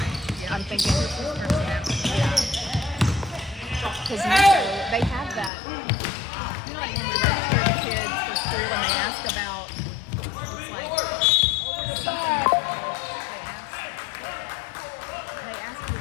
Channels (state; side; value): drops out; right; at 5.5 s